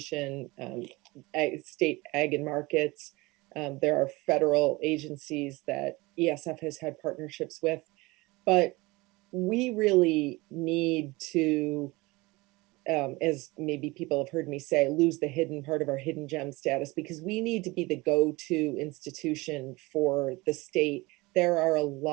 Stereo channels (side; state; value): left; quieter; 22.6 dB